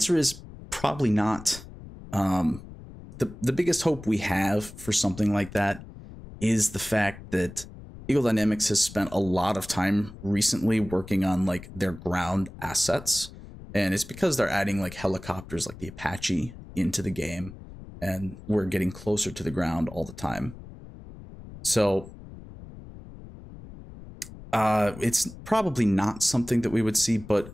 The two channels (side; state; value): left; noise; rumble, 16 dB below the sound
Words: is probably not. The biggest hope we have for something like that is the fact that Eagle Dynamics has spent a lot of time recently working on, like, their ground assets, and it's because they're adding, like, helicopters like the Apache into the game, and we're getting closer to the ground all the time. So it's probably not something that we would see,